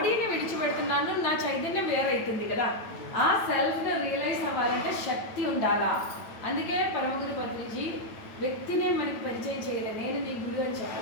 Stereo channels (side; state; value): right; late; 9.1 ms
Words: విడిచిపెడుతున్నాను, నా చైతన్యం వేరైతుంది కదా. ఆ సెల్ఫ్ని రియలైజ్ అవ్వాలంటే శక్తి ఉండాలా. అందుకే పరమగురు పత్రిజీ వ్యక్తినే మనకి పరిచయం చేయలేదు. నేను నీ గురువు అని